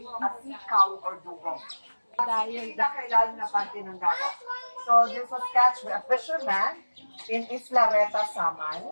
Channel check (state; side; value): inverted; both; correlation -1.00